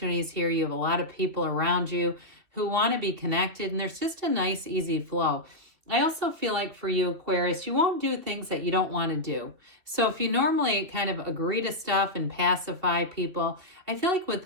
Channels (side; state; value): left; late; 2.9 ms